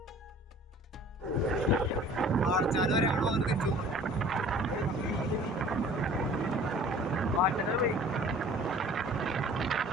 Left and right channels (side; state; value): both; normal; correlation 0.48